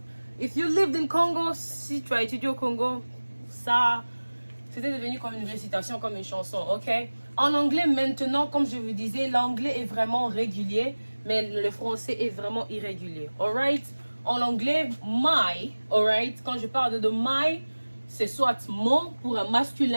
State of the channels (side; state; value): both; inverted; correlation -1.00